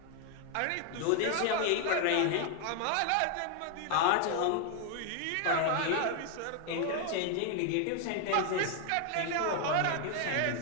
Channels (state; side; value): different; both; correlation 0.00